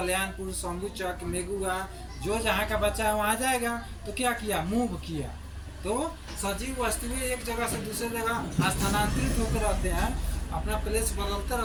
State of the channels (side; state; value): both; identical; correlation 1.00